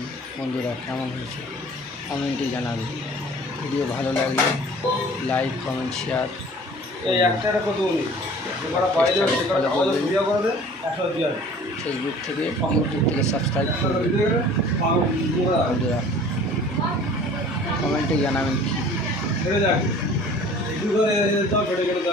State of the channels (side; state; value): both; normal; correlation 0.47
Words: বন্ধুরা, কেমন হয়েছে কমেন্টে জানাবে। ভিডিও ভালো লাগলে লাইক, কমেন্ট, শেয়ার। ফেসবুক থেকে, ইউটিউব থেকে সাবস্ক্রাইব করবেন। বন্ধুরা কমেন্টে জানাবেন